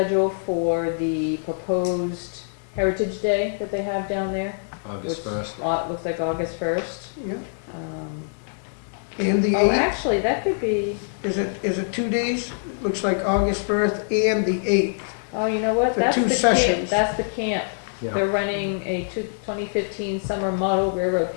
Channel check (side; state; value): right; silent; 62 dB below the other